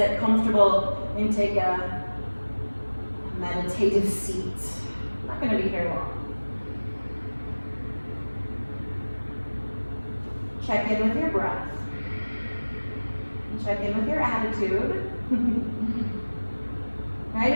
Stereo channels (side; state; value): both; inverted; correlation -1.00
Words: comfortable and take a meditative seat. I'm not going to be here long. Check in with your breath. Check in with your attitude. Right?